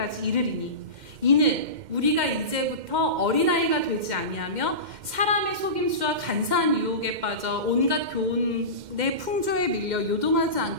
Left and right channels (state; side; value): late; left; 2.1 ms